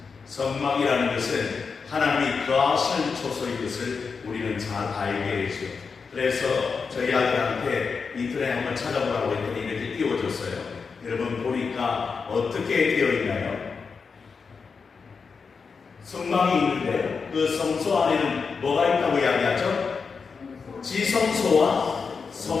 성막이라는 것은 하나님이 거하시는 초소인 것을 우리는 잘 알게 되죠. 그래서 저희 아들한테 인터넷에 한번 찾아보라고 했더니 이렇게 띄워줬어요. 여러분 보니까 어떻게 되어 있나요? 성막이 있는데 그 성소 안에는 뭐가 있다고 이야기하죠? 지성소와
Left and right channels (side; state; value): right; quieter; 5.3 dB